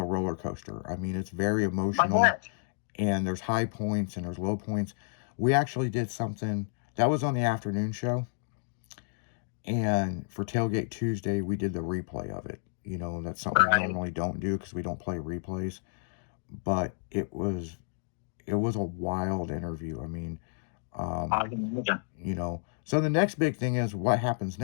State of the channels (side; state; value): right; silent; digital silence